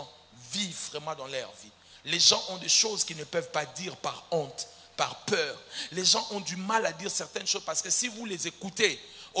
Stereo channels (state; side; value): identical; both; correlation 1.00